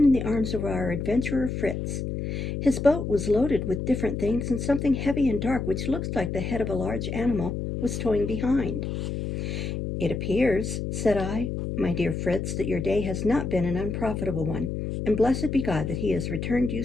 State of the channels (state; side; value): noise; left; hum, 3 dB below the sound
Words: in the arms of our adventurer Fritz. His boat was loaded with different things, and something heavy and dark, which looked like the head of a large animal, was towing behind. "It appears," said I, "my dear Fritz, that your day has not been an unprofitable one, and blessed be God that he has returned you